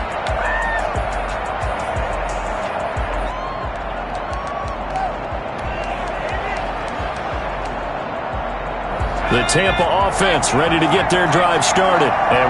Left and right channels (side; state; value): both; identical; correlation 1.00